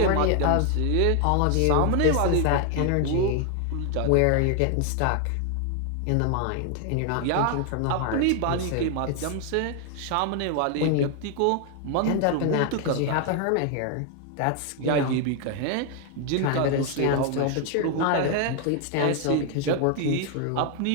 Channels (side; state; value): both; different; correlation 0.01